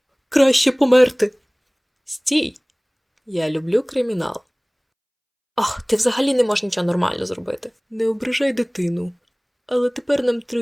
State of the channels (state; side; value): identical; both; correlation 1.00